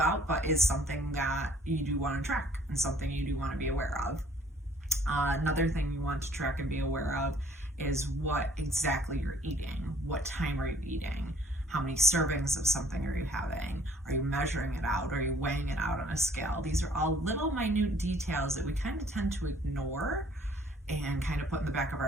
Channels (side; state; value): both; normal; correlation 0.59